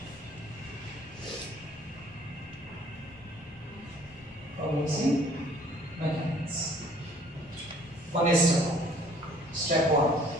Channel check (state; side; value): normal; both; correlation 0.56